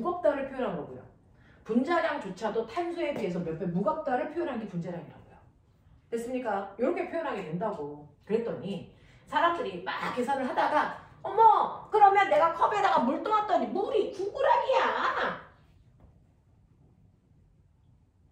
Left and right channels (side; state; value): both; identical; correlation 1.00